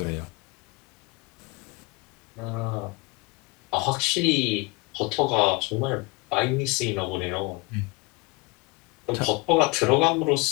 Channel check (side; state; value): right; quieter; 25.2 dB